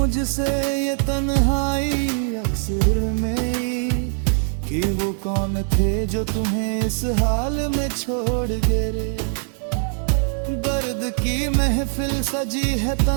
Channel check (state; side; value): silent; left; 56 dB below the other